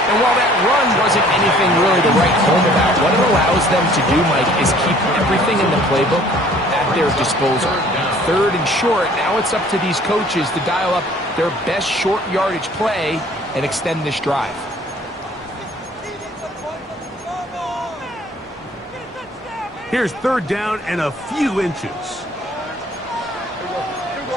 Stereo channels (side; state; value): both; normal; correlation 0.55